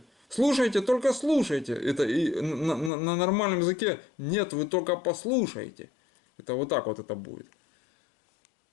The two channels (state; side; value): drops out; right; at 2.9 s